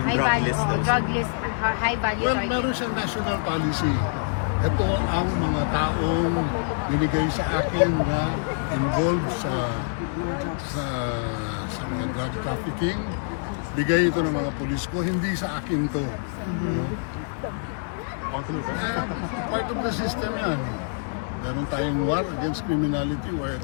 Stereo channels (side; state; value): right; silent; digital silence